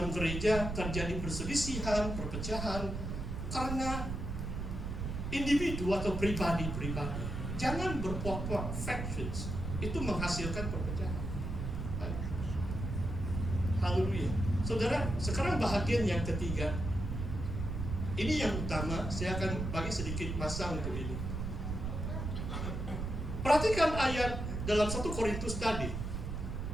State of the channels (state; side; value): noise; right; rumble, 4 dB below the sound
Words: gereja terjadi perselisihan, perpecahan karena individu atau pribadi-pribadi. Jangan berpuak-puak factions. Itu menghasilkan perpecahan. Haleluya. Saudara, sekarang bahagian yang ketiga. Ini yang utama, saya akan bagi sedikit masa untuk ini. Perhatikan ayat dalam 1 Korintus tadi.